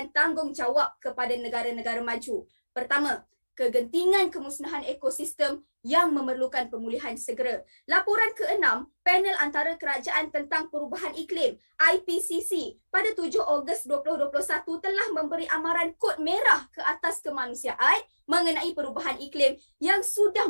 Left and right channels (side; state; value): both; inverted; correlation -1.00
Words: tanggungjawab kepada negara-negara maju. Pertama, kegentingan kemusnahan ekosistem yang memerlukan pemulihan segera. Laporan ke-6, Panel Antara Kerajaan tentang Perubahan Iklim IPCC pada 7 Ogos 2021 telah memberi amaran kod merah ke atas kemanusiaan mengenai perubahan iklim yang sudah